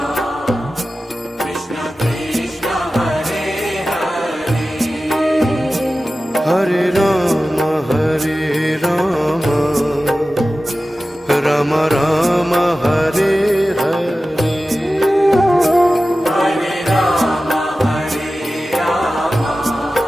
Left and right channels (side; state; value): both; normal; correlation 0.95